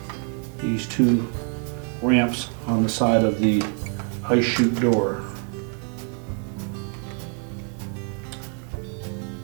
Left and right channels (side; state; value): left; quieter; 36.6 dB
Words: these two ramps on the side of the ice chute door.